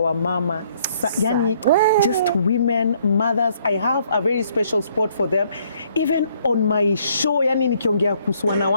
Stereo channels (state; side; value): inverted; both; correlation -0.66